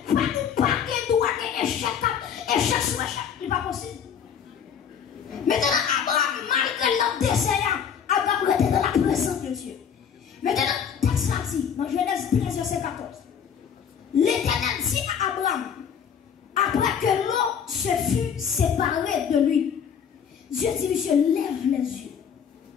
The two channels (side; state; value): right; quieter; 7.7 dB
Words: ou pas qu'à droit échec sur échec, ce n'est pas possible. Maintenant, Abraham, malgré leur désert, Abraham était dans la présence de Dieu. Maintenant, texte là dit, dans Genèse 13, verset 14, l'Éternel dit à Abraham, après que l'eau se fut séparée de lui, Dieu dit, monsieur, lève les yeux.